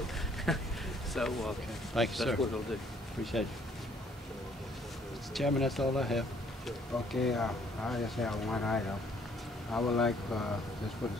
now. So Thank you, that's sir. what it'll do. Appreciate it. Mr. Chairman, that's all I have. Okay, I just have one item. I would like just for the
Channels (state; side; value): normal; both; correlation 0.63